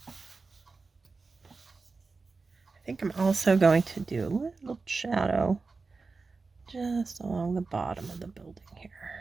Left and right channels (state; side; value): quieter; left; 4.2 dB